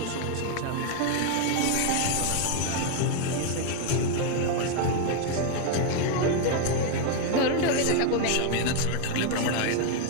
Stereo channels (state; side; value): different; both; correlation 0.00